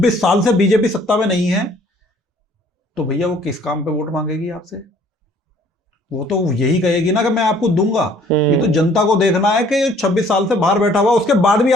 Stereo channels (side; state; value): both; normal; correlation 0.58